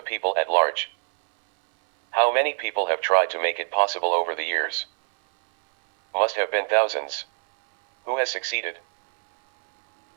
people at large. How many people have tried to make it possible over the years? Must have been thousands. Who has succeeded?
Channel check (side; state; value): left; silent; 63 dB below the other